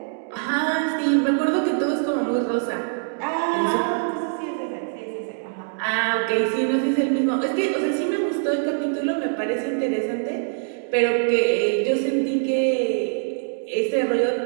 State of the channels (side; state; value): left; silent; digital silence